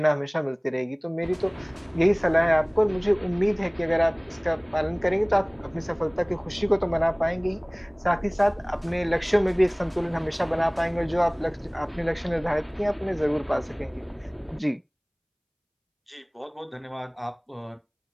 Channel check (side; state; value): both; identical; correlation 1.00